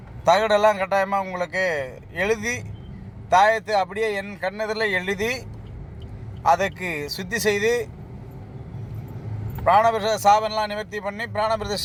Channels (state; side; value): identical; both; correlation 1.00